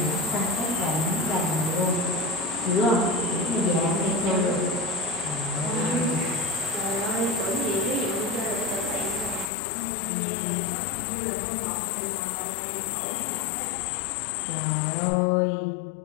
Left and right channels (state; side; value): drops out; right; at 9.5 s